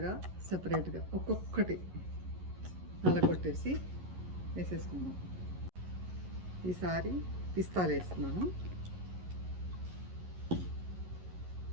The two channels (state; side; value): late; left; 11 ms